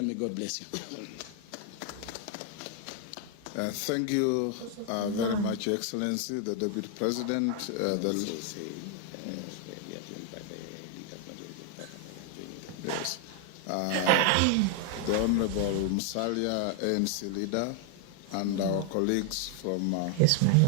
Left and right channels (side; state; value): both; different; correlation 0.00